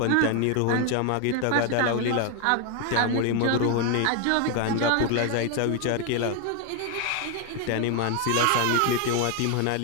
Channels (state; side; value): different; both; correlation 0.01